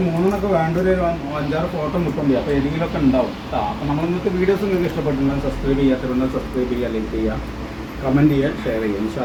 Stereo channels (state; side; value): identical; both; correlation 1.00